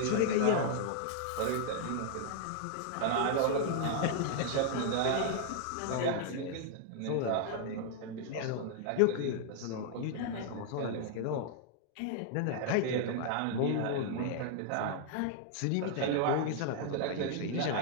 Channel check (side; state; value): both; different; correlation -0.01